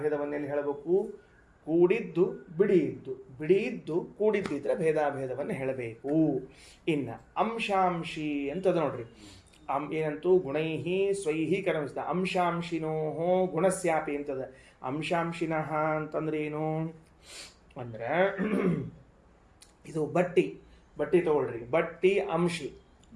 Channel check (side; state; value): both; identical; correlation 1.00